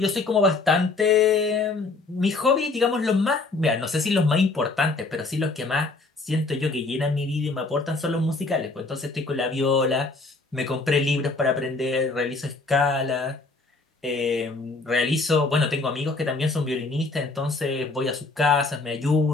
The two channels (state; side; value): quieter; right; 3.6 dB